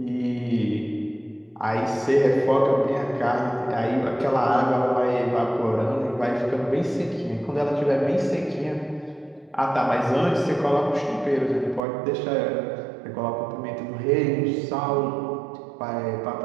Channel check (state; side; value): drops out; left; at 11.8 s